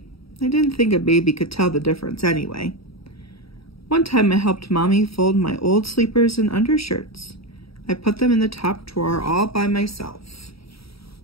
I didn't think a baby could tell the difference anyway. One time I helped Mommy fold my old sleepers and undershirts. I put them in the top drawer all by myself.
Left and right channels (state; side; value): late; right; 0.76 ms